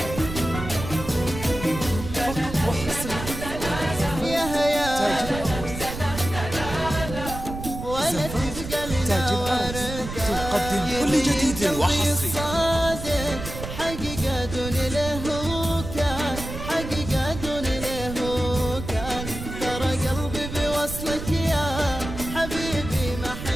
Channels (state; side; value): noise; right; rumble, 8 dB below the sound